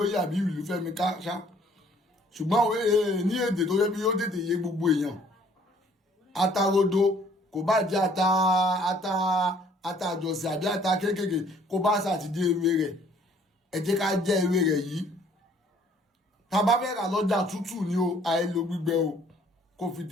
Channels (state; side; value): normal; both; correlation 0.59